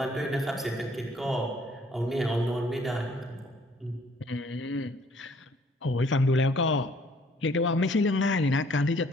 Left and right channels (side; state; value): both; normal; correlation 0.61